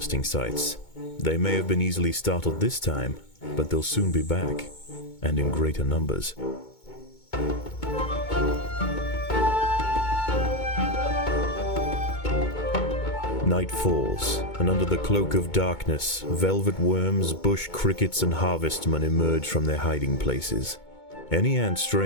sites. They may have been easily startled this time, but they'll soon be back, and in greater numbers. Night falls, and under the cloak of darkness, velvet worms, bush crickets, and harvestmen emerge from their hiding places. Any ant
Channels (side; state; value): right; late; 2.2 ms